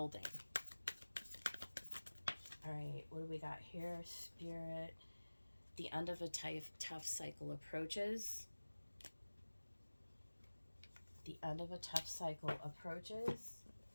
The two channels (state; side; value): inverted; both; correlation -1.00